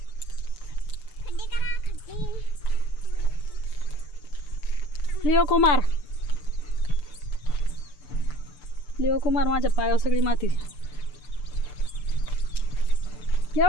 लिओ कुमार माझ्या पायावर सगळी माती.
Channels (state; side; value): late; right; 6.8 ms